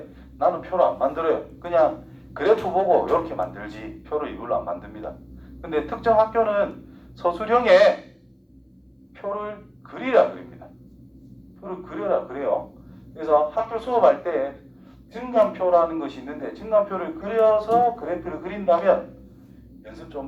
나는 표로 안 만들어요. 그냥 그래프 보고 이렇게 만들지 표로 이걸로 안 만듭니다. 근데 특정 학교는 서술형에 표를 그리라 그립니다. 표를 그려라 그래요. 그래서 학교 수업할 때 증감표라는 것이 있는데 증감표를 그려서 그래프를 그린다면 연습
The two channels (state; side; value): identical; both; correlation 1.00